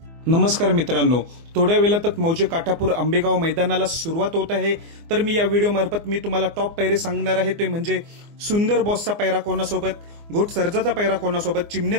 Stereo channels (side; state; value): left; late; 24 ms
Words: नमस्कार मित्रांनो, थोड्या वेळातच मौजे काठापूर आंबेगाव मैदानाला सुरुवात होत आहे। तर मी या व्हिडिओ मार्फत मी तुम्हाला टॉप पैरे सांगणार आहे, ते म्हणजे सुंदर बॉसचा पैरा कोणासोबत, घोट सर्जाचा पैरा कोणासोबत,